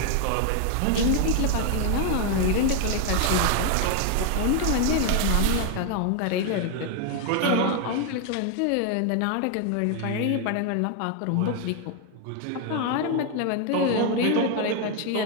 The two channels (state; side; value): different; both; correlation 0.01